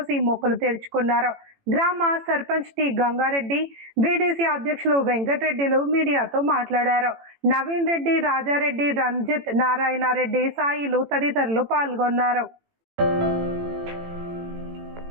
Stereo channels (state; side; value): late; left; 18 ms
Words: మొక్కులు తెరుచుకున్నారు. గ్రామ సర్పంచ్ టి గంగారెడ్డి, బీడీసీ అధ్యక్షులు వెంకటరెడ్డిలు మీడియాతో మాట్లాడారు. నవీన్ రెడ్డి, రాజారెడ్డి, రంజిత్, నారాయణరెడ్డి, సాయిలు తదితరులు పాల్గొన్నారు.